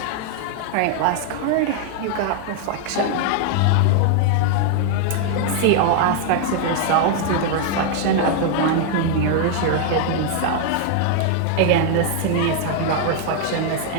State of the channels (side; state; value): both; different; correlation 0.00